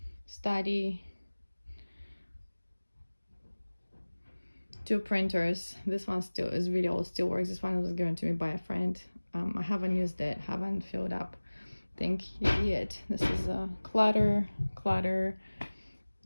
study. 2 printers. This one still is really old, still works. This one was given to me by a friend. I haven't used it, haven't filled up thing yet. This is a clutter,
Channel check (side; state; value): both; inverted; correlation -1.00